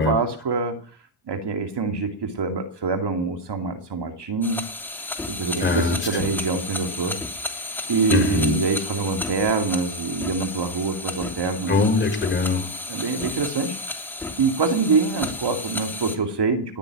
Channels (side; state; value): both; normal; correlation 0.01